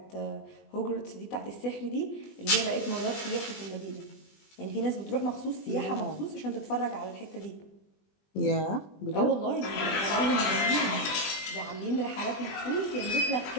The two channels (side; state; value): right; late; 20 ms